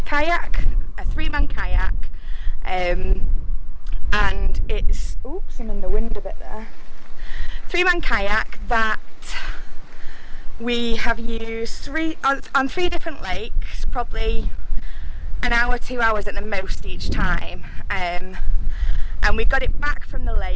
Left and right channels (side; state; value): both; identical; correlation 1.00